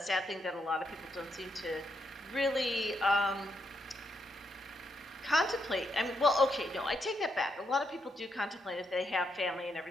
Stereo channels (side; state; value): both; normal; correlation 0.79